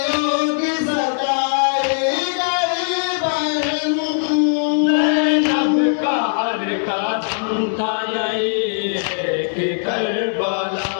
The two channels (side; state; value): right; silent; 66 dB below the other